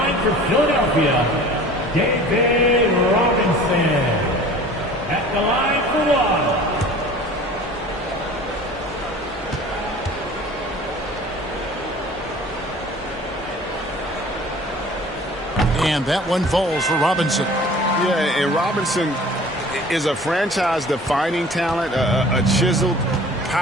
for Philadelphia, David Robinson. At the line for one. And that one falls for Robinson. Yeah, and Robinson is a franchise-defining talent, a chiseled,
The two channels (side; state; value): both; normal; correlation 0.45